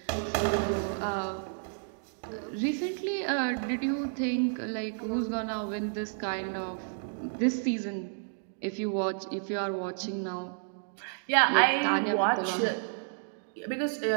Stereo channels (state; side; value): silent; left; digital silence